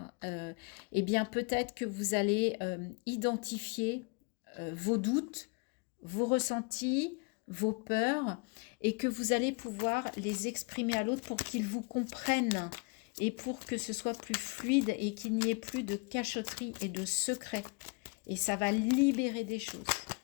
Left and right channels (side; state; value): right; quieter; 32.1 dB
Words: Eh bien, peut-être que vous allez identifier vos doutes, vos ressentis, vos peurs, et que vous allez pouvoir les exprimer à l'autre pour qu'il vous comprenne et pour que ce soit plus fluide et qu'il n'y ait plus de cachotterie et de secrets. Et ça va libérer des choses.